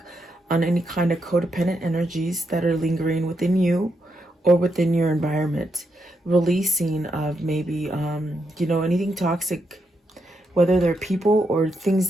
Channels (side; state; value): both; normal; correlation 0.82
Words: on any kind of codependent energies that are lingering within you or within your environment. Releasing of maybe, anything toxic, whether they're people or things